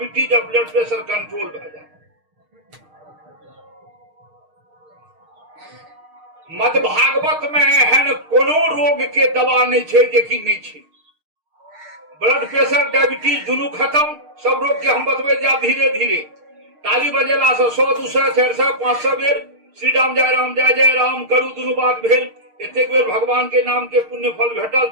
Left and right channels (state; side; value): late; left; 6.5 ms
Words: और ब्लड प्रेशर कंट्रोल भए जाए। मद भागवत में एहन कोनो रोग के दवा नहीं छै जे कि नहीं छै। ब्लड प्रेशर डायबिटीज दुनू खत्म, सब रोग के हम बतबै जाब धीरे धीरे। ताली बजेला से 100, 200, 400, 500 बेर श्री राम जय जय राम करू दुनू बात भेल। एतेक बेर भगवान के नाम के पुण्य फल भेटल।